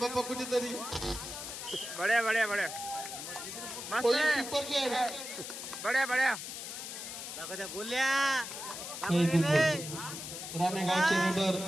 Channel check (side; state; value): left; noise; hiss, 8 dB below the sound